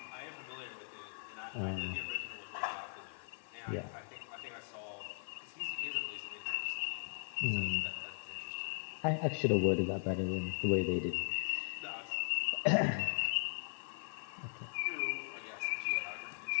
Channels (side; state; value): right; silent; digital silence